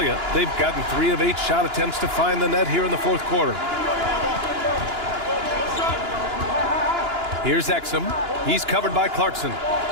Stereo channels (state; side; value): late; left; 2.9 ms